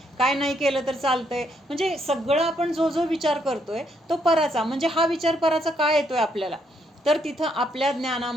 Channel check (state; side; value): normal; both; correlation 0.73